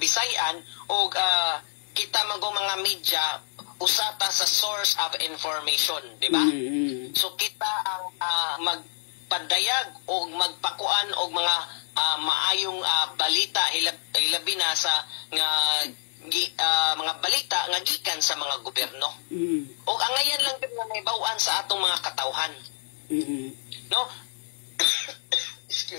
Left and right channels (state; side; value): silent; right; 60 dB below the other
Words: ug kita mga media usata sa source of information, di ba? So kita ang magpadayag o magpakuan og mga maayong balita ilabi na sa mga balita nga gikan sa mga gobyerno. O angayan lang din nga may bawaan sa atong mga katawhan. No?